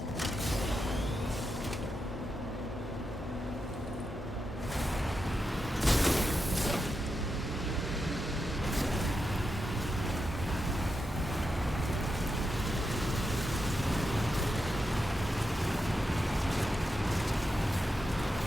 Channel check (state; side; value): normal; both; correlation 0.87